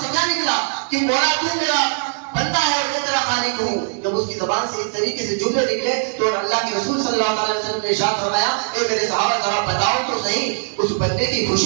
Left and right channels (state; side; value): silent; left; digital silence